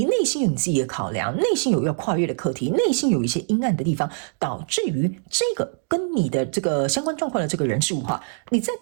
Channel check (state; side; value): silent; left; 63 dB below the other